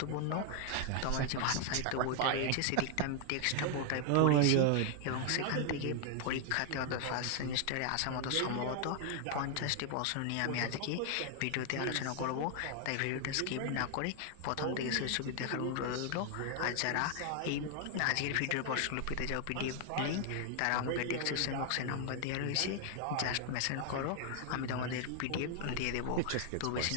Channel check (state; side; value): different; both; correlation 0.00